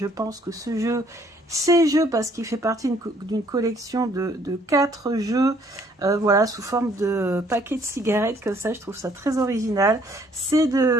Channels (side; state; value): both; normal; correlation 0.63